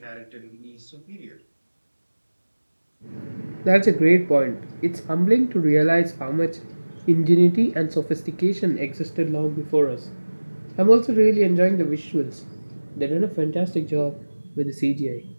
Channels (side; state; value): both; inverted; correlation -1.00